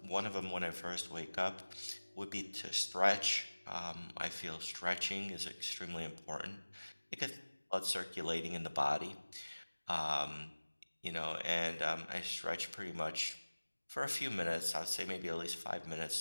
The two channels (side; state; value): both; inverted; correlation -1.00